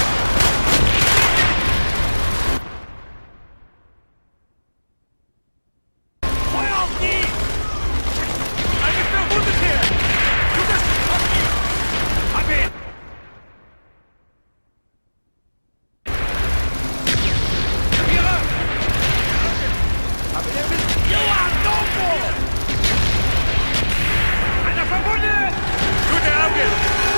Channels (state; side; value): inverted; both; correlation -1.00